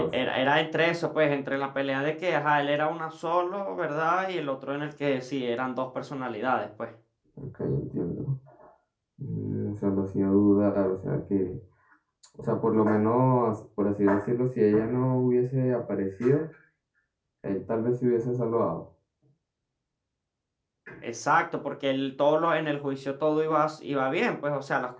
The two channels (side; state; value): both; identical; correlation 1.00